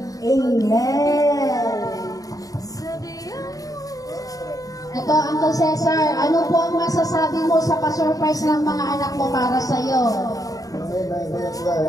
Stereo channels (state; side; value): late; right; 0.17 ms